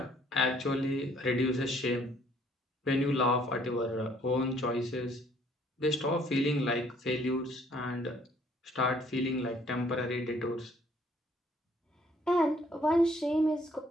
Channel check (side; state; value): both; normal; correlation 0.62